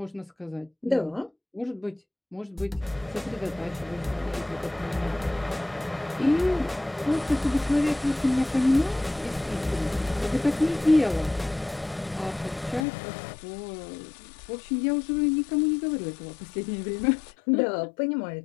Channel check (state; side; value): drops out; right; at 12.9 s